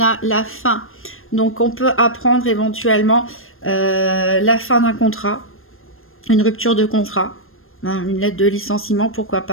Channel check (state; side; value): late; right; 0.60 ms